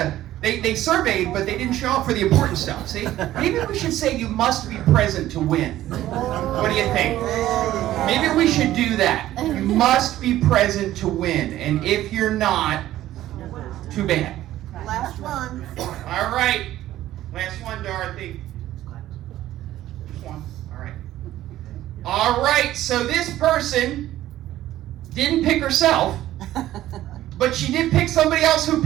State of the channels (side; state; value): left; quieter; 14.0 dB